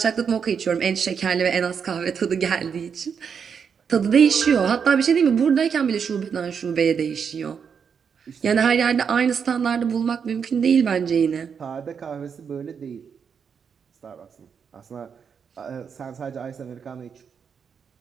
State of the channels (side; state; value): left; quieter; 6.7 dB